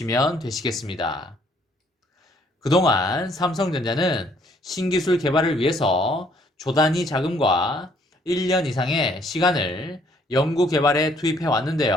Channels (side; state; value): both; normal; correlation 0.64